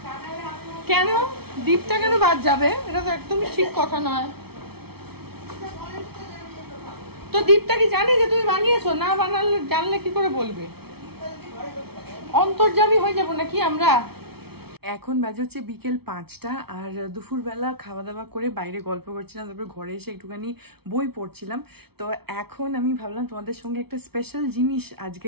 কেন দীপটা কেন বাদ যাবে? এটা তো একদমই ঠিক কথা নয়। তো দীপটা কি জানে যে তুমি বানিয়েছো? না বানালে জানলে কি করে বলবে? অন্তর্যামী হয়ে যাবো নাকি আমরা? এখন বাজে হচ্ছে বিকেল 5টা আর দুপুরবেলা খাওয়া দাওয়া করে বাইরে গল্প করছিলাম, তারপরে ঘরে এসে একটুখানি বই পড়ছিলাম। তো এখন আমি ভাবলাম তোমাদের সঙ্গে একটা স্পেশাল জিনিস আজকে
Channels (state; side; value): late; left; 0.96 ms